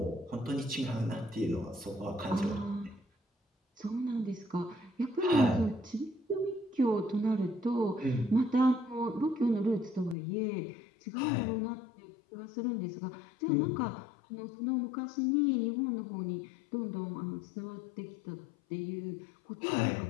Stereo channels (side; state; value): right; drops out; at 10.2 s